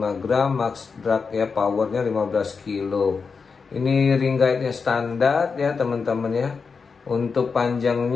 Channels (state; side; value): quieter; right; 5.2 dB